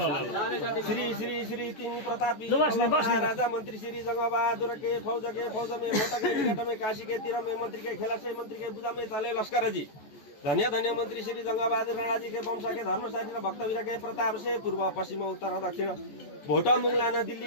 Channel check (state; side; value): late; right; 14 ms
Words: श्री श्री श्री तिमी प्रतापी राजा मन्त्री श्री जंगबहादुर के फौज में मोटा के निकट में काशी के तीर में मंत्री के खेला से मंत्री के बुझा में चले लश्कर जी धन्य धन्य मंत्री श्री जंगबहादुर राणा जी के वंश के धर्मशाली भक्तवीर के प्रताप से पूर्व पश्चिम उत्तर दक्षिण भोटा मुंगलाना